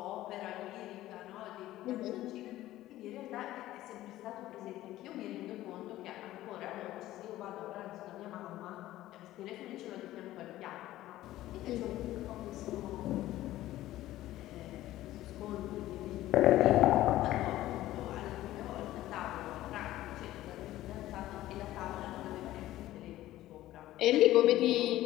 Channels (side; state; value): right; quieter; 15.1 dB